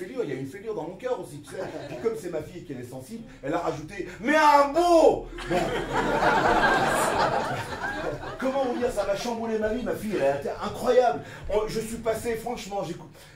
il y a une fêlure dans mon cœur aussi, tu sais. Puis comme c'est ma fille et qu'elle est sensible, elle a rajouté « Mais un beau !» Bon. Comment vous dire, ça m'a chamboulé ma vie, ma fille, elle a été incroyable. Je suis passé, franchement,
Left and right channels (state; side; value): identical; both; correlation 1.00